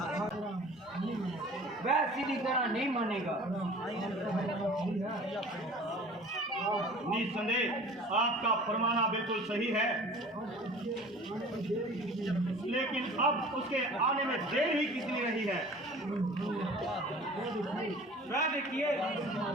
वह सीधी तरह नहीं मानेगा। निस्संदेह आपका फरमाना बिल्कुल सही है, लेकिन अब उसके आने में देर ही कितनी रही है। वह देखिए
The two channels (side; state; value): both; normal; correlation 0.44